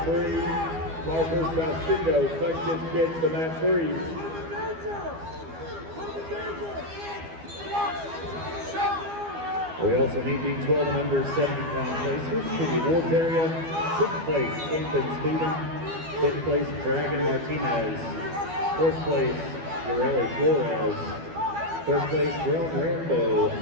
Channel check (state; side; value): late; left; 12 ms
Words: 3. Parker Salcido, Sunkist Kids to mat 3. We also need the 12 and under 70-pound placers to the awards area. 6th place, Camden Stephen. 5th place, Dragon Martinez. 4th place, Ureli Flores. 3rd place, Jerome Rambo.